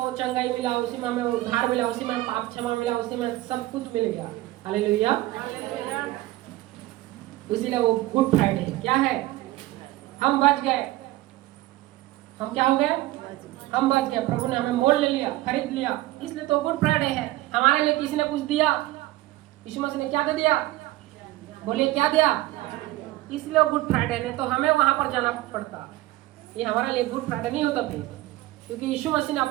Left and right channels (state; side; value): quieter; left; 17.5 dB